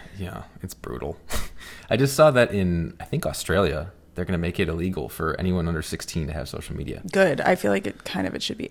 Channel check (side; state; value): both; identical; correlation 1.00